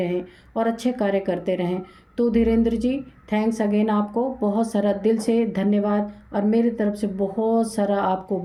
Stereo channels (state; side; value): identical; both; correlation 1.00